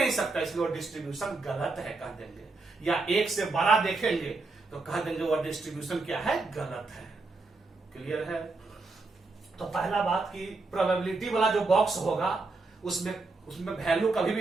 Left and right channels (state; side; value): quieter; left; 3.6 dB